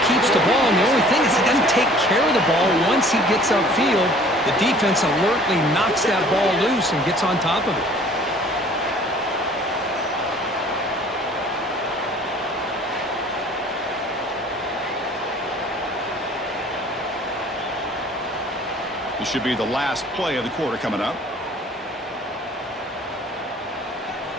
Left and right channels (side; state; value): both; normal; correlation 0.52